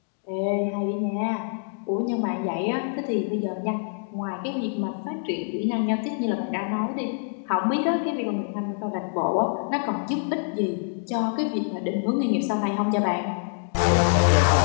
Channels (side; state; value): right; silent; digital silence